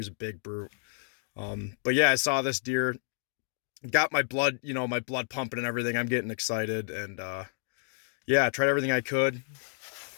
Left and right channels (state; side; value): silent; right; 58 dB below the other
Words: a big brute. But yeah, I saw this deer, got my blood, my blood pumping and everything. I'm getting excited, and yeah, I tried everything I could.